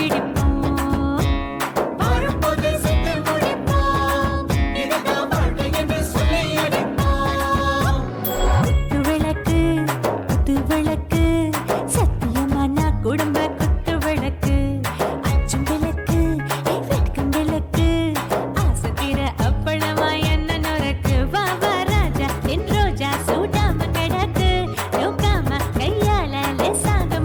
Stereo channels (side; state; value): both; identical; correlation 1.00